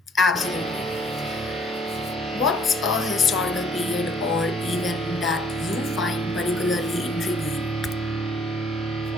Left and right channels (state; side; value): normal; both; correlation 0.61